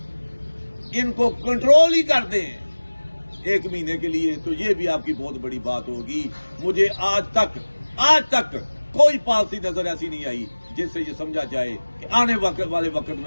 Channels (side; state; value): both; inverted; correlation -1.00